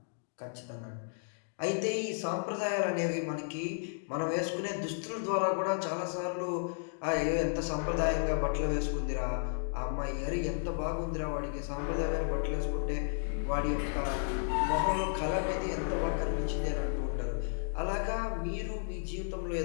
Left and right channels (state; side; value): silent; right; digital silence